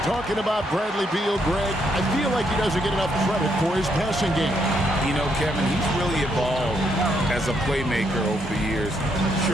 Talking about Bradley Beal, Greg, I feel like he doesn't get enough credit for his passing game. You know, Kevin, he's really evolved as a playmaker over the years.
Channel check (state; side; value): normal; both; correlation 0.75